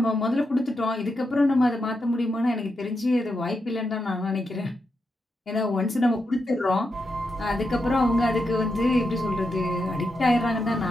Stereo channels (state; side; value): normal; both; correlation 0.85